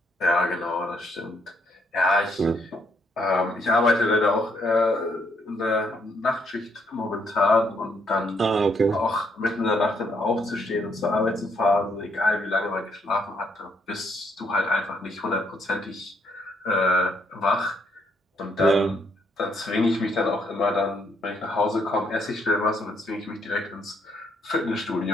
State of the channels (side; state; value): both; normal; correlation 0.71